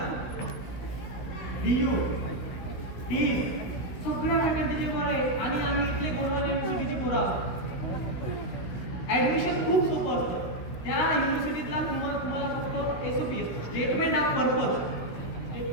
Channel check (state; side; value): late; right; 16 ms